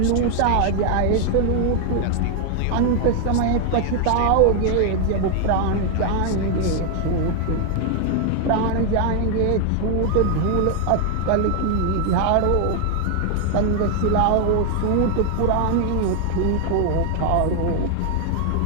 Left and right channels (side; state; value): both; different; correlation 0.00